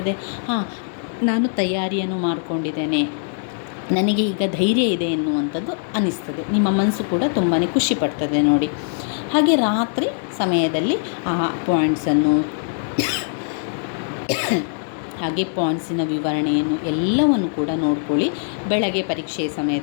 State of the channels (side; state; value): right; silent; digital silence